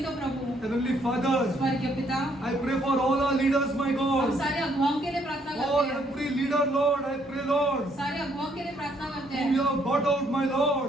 का प्रभु। Heavenly Father, स्वर्गीय पिता, I pray for all our leaders, my हम God. सारे अगुवाओं के लिए प्रार्थना Oh, करते हैं, every leader, Lord, I pray, Lord, सारे अगुवाओं के लिए प्रार्थना करते whom you हैं have brought out, my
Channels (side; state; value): both; normal; correlation 0.69